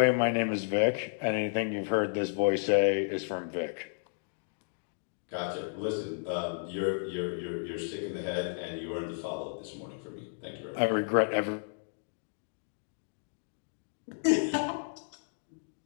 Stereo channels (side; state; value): right; silent; digital silence